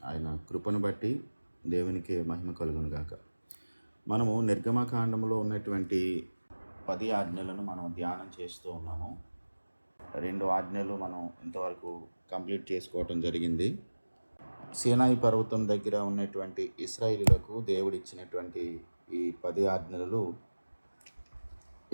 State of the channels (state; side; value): inverted; both; correlation -1.00